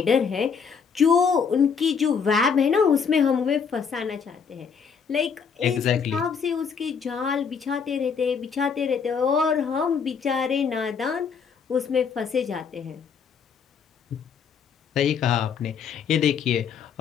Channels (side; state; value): right; quieter; 6.3 dB